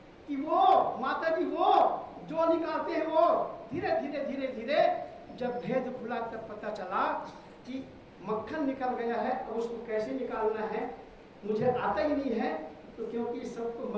कि वो माता जी वो जो निकालते हैं वो धीरे धीरे धीरे धीरे जब भेद खुला तब पता चला कि मक्खन निकल गया है। अब उसको कैसे निकालना है मुझे आता ही नहीं है, तो क्योंकि सबको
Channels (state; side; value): identical; both; correlation 1.00